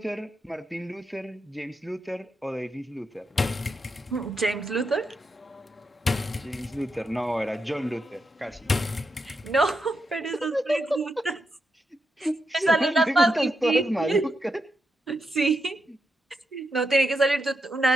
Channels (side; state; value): both; normal; correlation 0.84